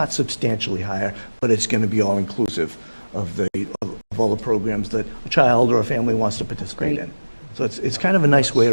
substantially higher, but it's going to be all-inclusive of all the programs that a child or a family wants to participate in. So it's kind of a nice way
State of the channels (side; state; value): both; inverted; correlation -1.00